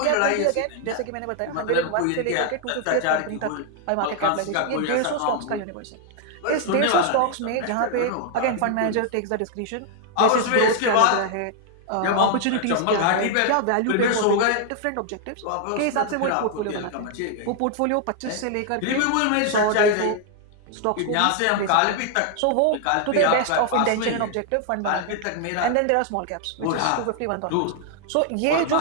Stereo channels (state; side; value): different; both; correlation 0.00